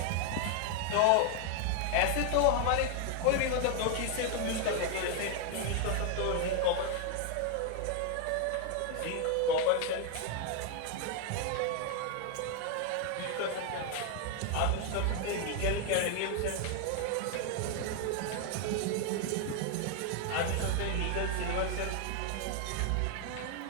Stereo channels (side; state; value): both; different; correlation 0.00